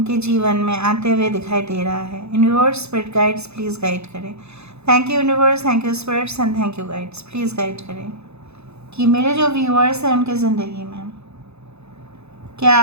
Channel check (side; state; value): left; late; 0.80 ms